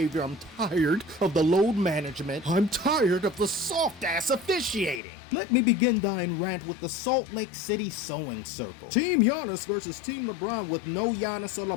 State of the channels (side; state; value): right; drops out; at 5.0 s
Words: I'm tired of the load management. I'm tired of the soft-ass officiating. Let me begin thine rant with the Salt Lake City sewing circle. Team Giannis versus Team LeBron with no Giannis or